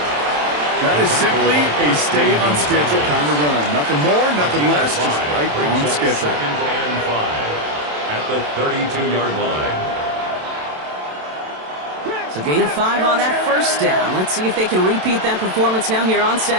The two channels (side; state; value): left; late; 27 ms